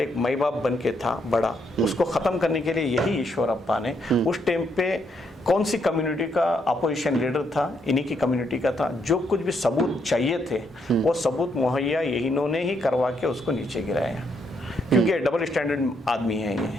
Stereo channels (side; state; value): both; normal; correlation 0.75